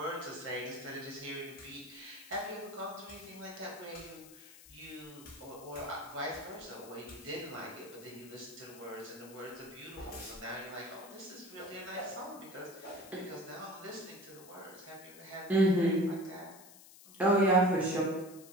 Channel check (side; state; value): left; noise; hiss, 19 dB below the sound